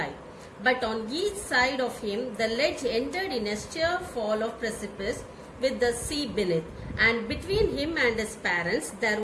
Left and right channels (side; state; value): both; identical; correlation 1.00